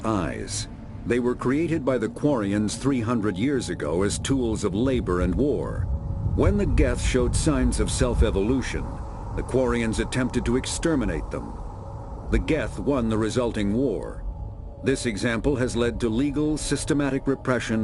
They were created by the Quarians 300 years ago as tools of labor and war. When the Geth showed signs of self-evolution, the Quarians attempted to exterminate them. The Geth won the resulting war. This example has led to legal, systematic repression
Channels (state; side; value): identical; both; correlation 1.00